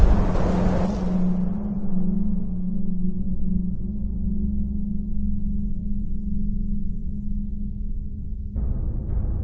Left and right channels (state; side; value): identical; both; correlation 1.00